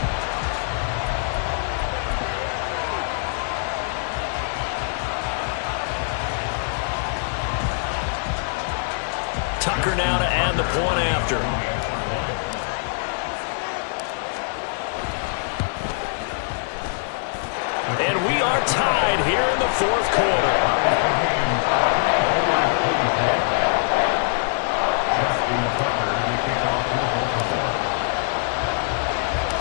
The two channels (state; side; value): silent; right; 57 dB below the other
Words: Tucker now to add the point after. And we are tied here in the 4th quarter.